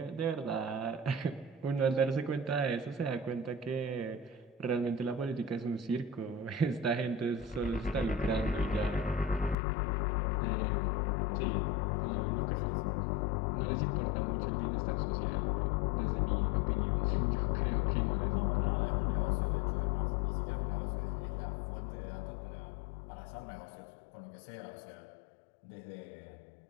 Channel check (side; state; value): right; drops out; at 9.6 s